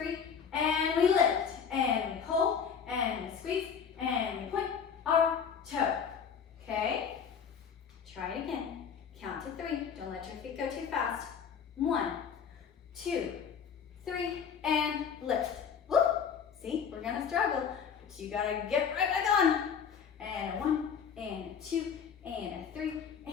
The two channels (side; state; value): right; quieter; 7.0 dB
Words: and we lift, and we pull, and we squeeze, and we point our toe. Okay? Try it again. Count to 3. Don't let your feet go too fast. 1, 2, 3, and lift. Whoop! See, we're gonna struggle, but you gotta get right back on. And a 1, and a 2, and a 3,